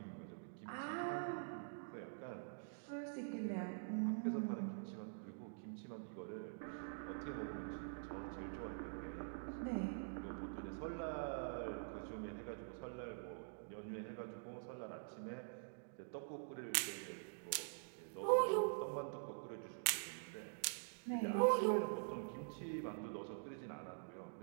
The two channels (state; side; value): silent; left; digital silence